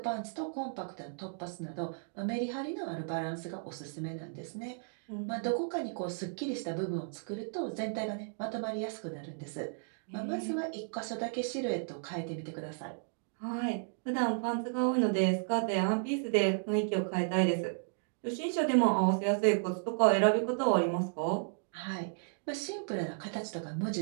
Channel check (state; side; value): silent; left; digital silence